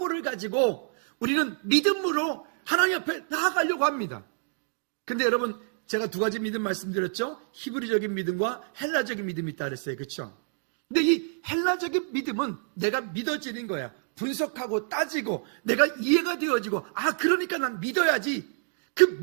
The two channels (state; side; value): silent; left; digital silence